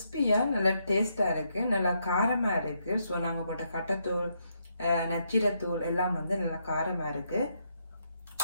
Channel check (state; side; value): inverted; both; correlation -0.77